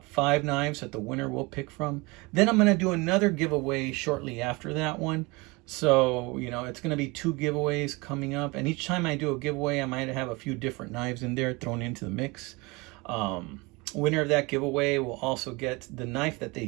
5 knives that the winner will pick from. Then I'm going to do another giveaway shortly after that one. So, you know, it's going to be 2 giveaways coming up. And each time I do a giveaway, I might have a few different knives in there thrown into the mix. Winner of that giveaway will also get the knife that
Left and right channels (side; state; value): left; quieter; 25.5 dB